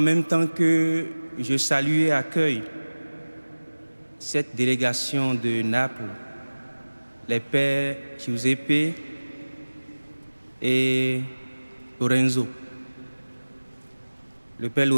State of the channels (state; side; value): inverted; both; correlation -1.00